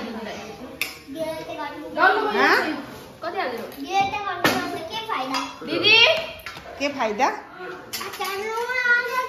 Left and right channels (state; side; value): identical; both; correlation 1.00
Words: दिदी के फाइदा?